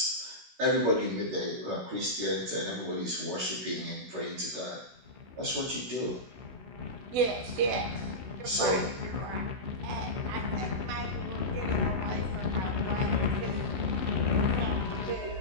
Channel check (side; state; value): left; late; 16 ms